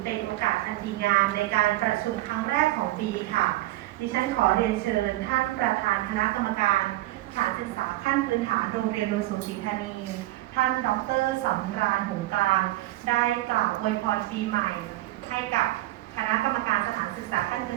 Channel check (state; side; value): quieter; left; 17.2 dB